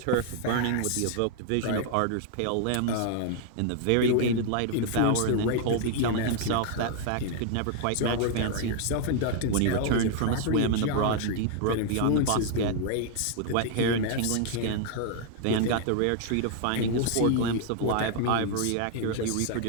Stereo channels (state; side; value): different; both; correlation 0.00